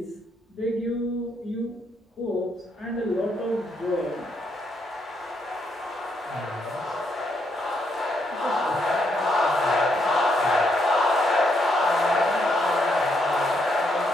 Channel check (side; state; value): both; normal; correlation 0.76